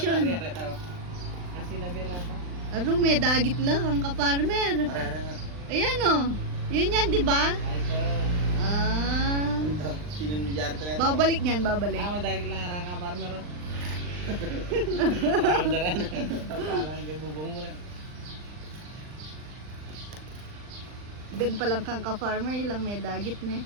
Aro may dagit lang ang ka-farmer. Ayan oh. Yun yan, di ba? Ah. Babalik niyan, babalik. Madagit lang arang ka, farmer. Orderan. Parang kay bubong mo na. Ben pa lang kang ka-farmer, ilang may dagit na.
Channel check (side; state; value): left; late; 39 ms